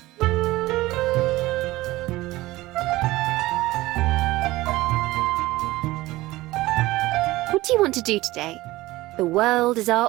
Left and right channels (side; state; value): left; quieter; 18.4 dB